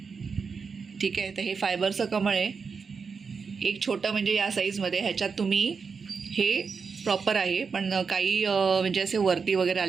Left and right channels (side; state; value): left; quieter; 5.4 dB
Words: ठीक आहे. तर हे फायबरचं कमळ आहे. एक छोटं म्हणजे या साईजमध्ये, ह्याच्यात तुम्ही हे प्रॉपर आहे, पण काही म्हणजे असे वरती वगैरे